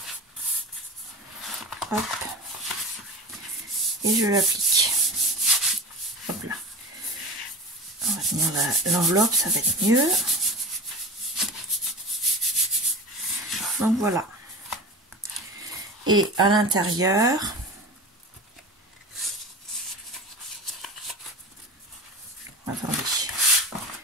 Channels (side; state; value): both; normal; correlation 0.31